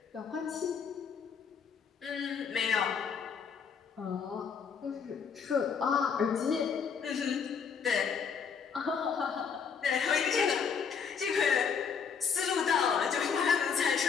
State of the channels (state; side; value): quieter; right; 6.4 dB